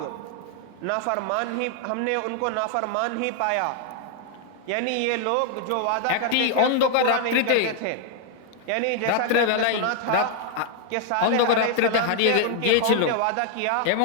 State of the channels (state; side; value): different; both; correlation 0.00